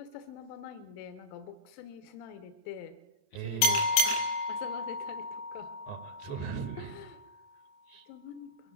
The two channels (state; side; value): late; right; 27 ms